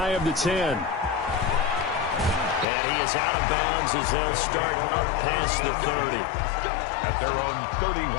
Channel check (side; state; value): right; drops out; at 2.7 s